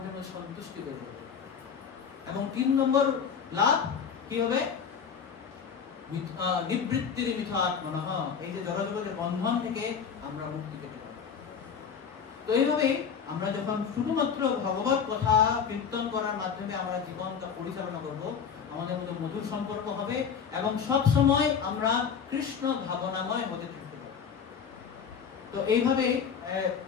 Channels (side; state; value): right; quieter; 6.8 dB